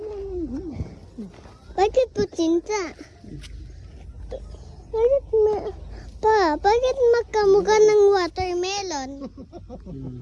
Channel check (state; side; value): identical; both; correlation 1.00